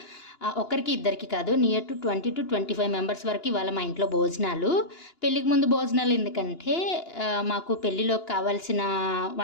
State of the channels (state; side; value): late; right; 2.9 ms